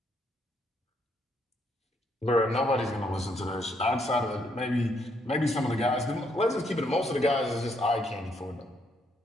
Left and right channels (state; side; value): normal; both; correlation 0.73